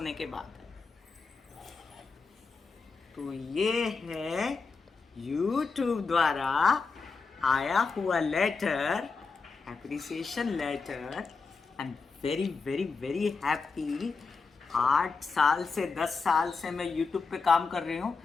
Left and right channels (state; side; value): quieter; right; 4.6 dB